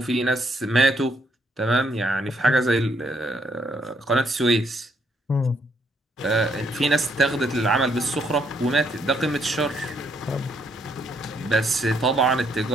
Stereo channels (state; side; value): normal; both; correlation 0.71